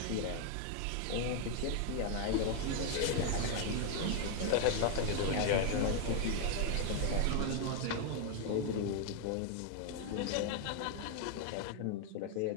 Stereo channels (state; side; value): different; both; correlation 0.00